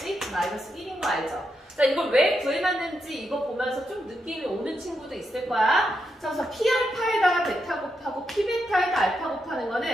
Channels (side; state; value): both; normal; correlation 0.83